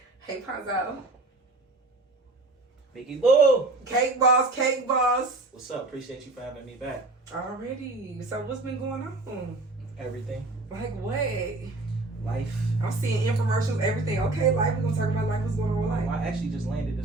Hey, Ponzo. Mickey Boo! Cake boss, cake boss. What's up? Appreciate you for having me back. Already. So what's been going on? Everything. Like what? Life. I'm seeing infomercials, everything. Okay, life. We're going to talk about life. What's going on with life? I actually just landed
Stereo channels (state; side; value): quieter; left; 3.0 dB